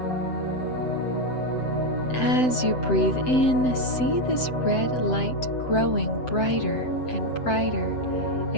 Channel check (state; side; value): late; right; 7.8 ms